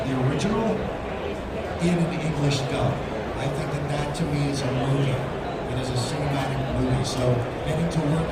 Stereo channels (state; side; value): identical; both; correlation 1.00